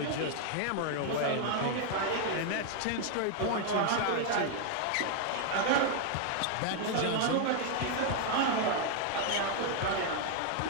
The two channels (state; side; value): different; both; correlation 0.00